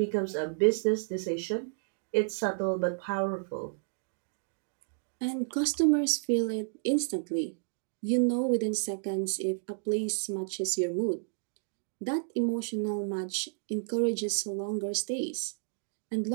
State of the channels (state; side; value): silent; left; digital silence